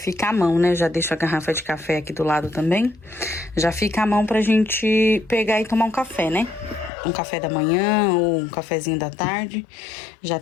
à mão, né? Já deixo a garrafa de café aqui do lado também. Já fica à mão pra gente pegar e tomar um café, né? Um café da manhã ou um cafezinho da tarde, já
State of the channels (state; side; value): drops out; right; at 6.9 s